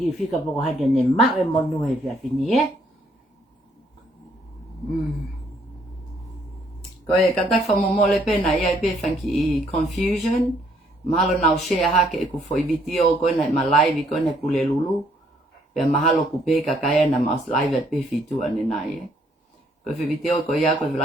fika poko hake ne ma e mo nu he fia fini e. Koe kata whamomole pena ia pe whanki I confusion. Mahalo nau share hake e ku foi video koe na ma live koe na pule lulu. Pea mahalo ku pe kakaya na mas live at pe fitu ane nai e. Koe fi video koe ia koe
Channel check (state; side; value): normal; both; correlation 0.67